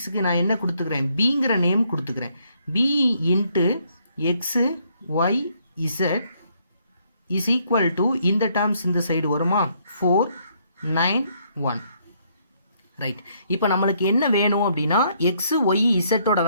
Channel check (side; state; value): both; inverted; correlation -0.70